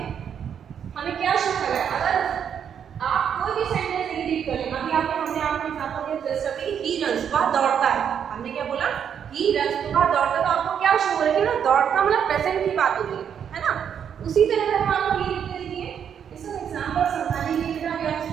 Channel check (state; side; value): quieter; left; 8.2 dB